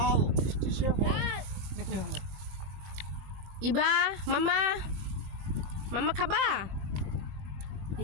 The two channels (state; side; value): late; left; 20 ms